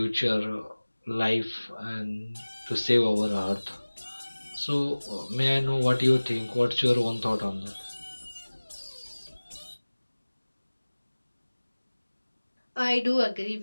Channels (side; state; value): both; inverted; correlation -1.00